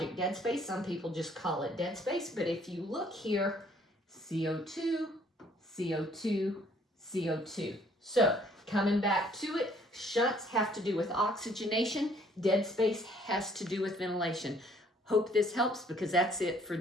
dead space. Some people just call it dead space, but if you look here, CO2, CO2, CO2. So coming back to it, shunts have to do with oxygenation. Dead space has to do with ventilation. Hope this helps, because that's it for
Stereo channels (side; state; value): both; normal; correlation 0.61